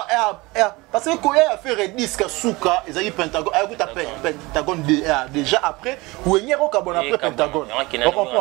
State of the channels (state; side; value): quieter; left; 23.0 dB